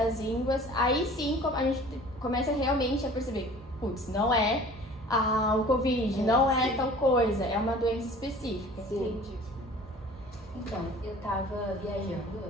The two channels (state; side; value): normal; both; correlation 0.46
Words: ínguas, aí sim a gente começa realmente a perceber, putz, não é o Covid, não é tal coisa, é uma doença específica. Entendi. Então, eu tava viajando, eu